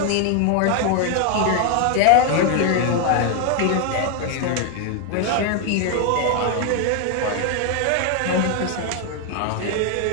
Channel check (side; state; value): both; different; correlation 0.01